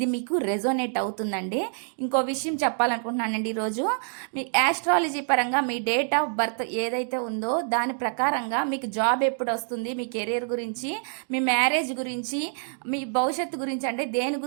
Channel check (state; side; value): silent; left; 61 dB below the other